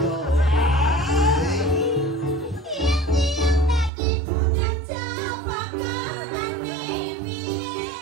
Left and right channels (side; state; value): left; drops out; at 3.9 s